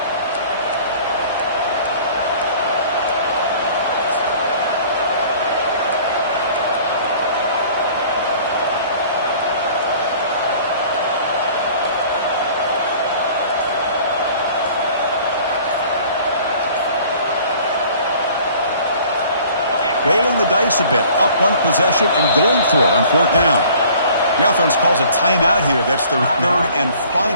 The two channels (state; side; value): inverted; both; correlation -0.51